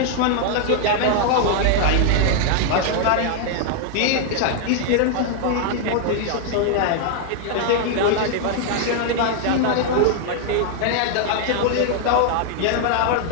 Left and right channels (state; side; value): different; both; correlation 0.00